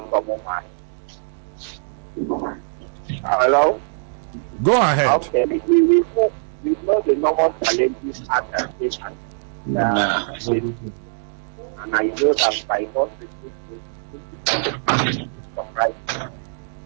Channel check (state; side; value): silent; left; digital silence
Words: from Umeh. Hello? Go ahead. Okay, we know the normal challenges at the state and I know that by not right,